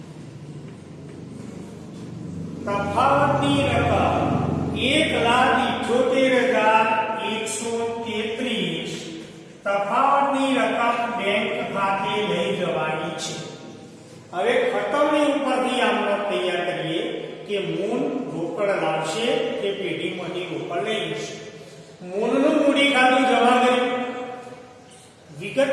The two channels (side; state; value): both; identical; correlation 1.00